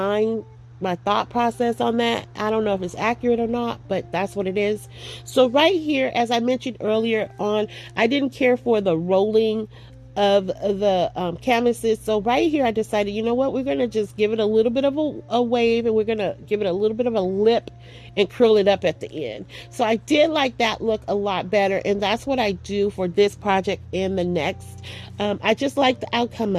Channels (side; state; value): both; identical; correlation 1.00